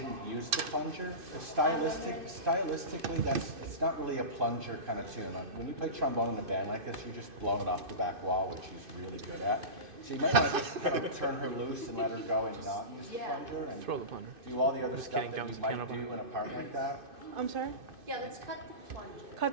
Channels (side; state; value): left; late; 2.5 ms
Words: use the plunger? 'Cause stylistically, it's not really a plunger kind of tune. Like, when you play trombone in a band like this, you're just blowing it off the back wall, which she's really good at. So you might want to just kind of turn her loose and let her go and not use the plunger and Throw the plunger. do all the other Just stuff kidding, that jumps you the might piano do behind. in a part like that. I'm sorry? Yeah, let's cut the plunger.